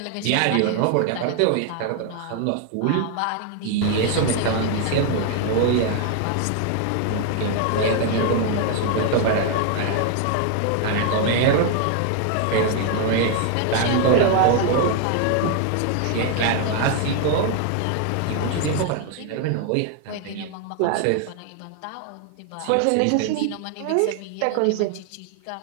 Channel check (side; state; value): both; different; correlation 0.00